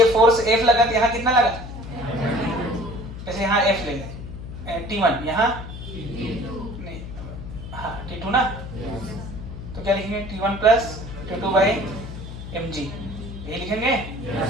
फोर्स f लगा तो यहाँ कितना लगा? जैसे यहाँ f ले लें, t1 यहाँ नहीं, हाँ t2 ना, तो क्या लिखेंगे? t1 plus t2 by mg, यही लिखेंगे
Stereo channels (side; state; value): left; noise; hum, 10 dB below the sound